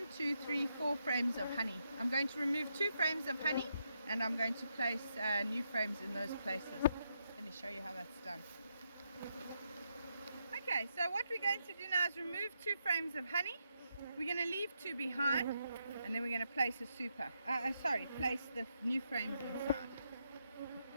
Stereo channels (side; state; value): both; inverted; correlation -0.81